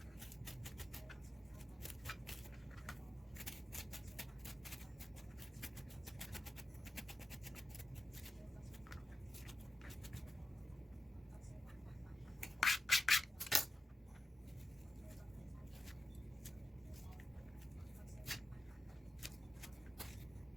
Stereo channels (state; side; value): normal; both; correlation 0.91